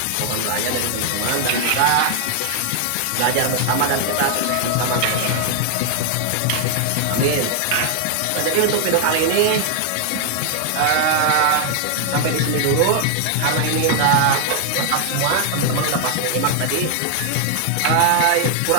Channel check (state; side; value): different; both; correlation 0.00